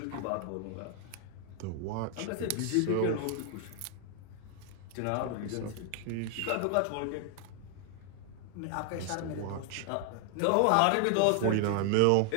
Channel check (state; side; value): different; both; correlation 0.00